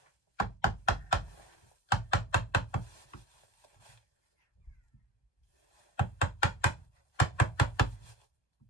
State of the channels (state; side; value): late; right; 1.2 ms